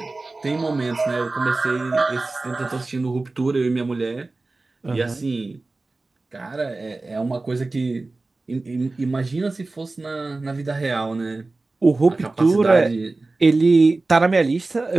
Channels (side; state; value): left; quieter; 3.3 dB